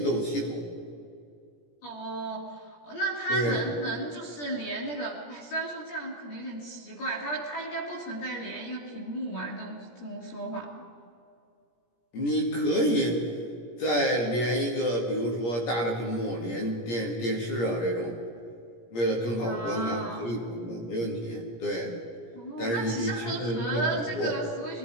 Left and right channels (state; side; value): late; right; 17 ms